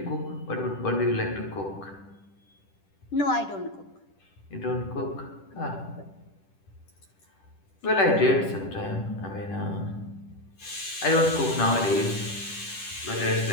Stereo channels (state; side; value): late; right; 10 ms